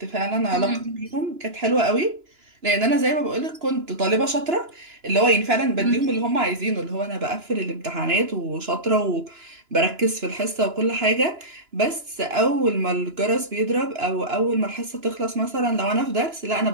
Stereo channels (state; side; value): late; left; 2.9 ms